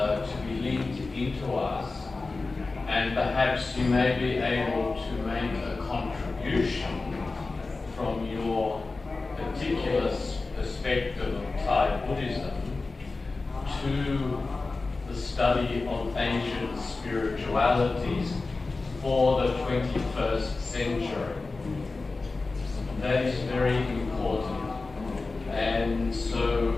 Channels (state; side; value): quieter; right; 3.7 dB